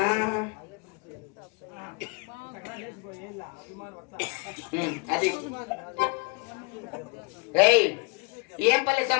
అది ఏయ్ ఏం పల్లి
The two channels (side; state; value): right; quieter; 31.0 dB